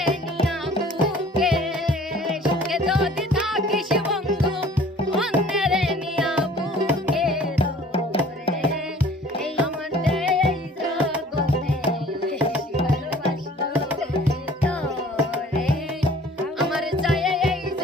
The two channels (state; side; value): normal; both; correlation 0.51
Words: নিয়া বুকে সুখে যদি থাকিস বন্ধু অন্যের নিয়া বুকে রে এই আমার এই জগতে বেশি ভালোবাসতো তোরে আমার চাই এই